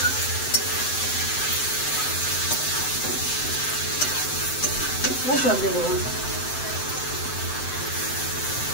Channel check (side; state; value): right; late; 7.8 ms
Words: জল দিয়ে দেবো।